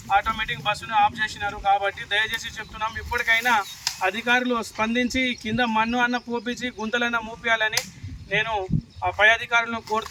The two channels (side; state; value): both; identical; correlation 1.00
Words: ఆటోమేటిక్ బస్సును ఆఫ్ చేసినారు. కాబట్టి దయచేసి చెప్తున్నాం, ఇప్పటికైనా అధికారులు స్పందించి కింద మన్ను అన్న పోపించి గుంతలన్న మూపియాలని నేను ఆ పై అధికారులను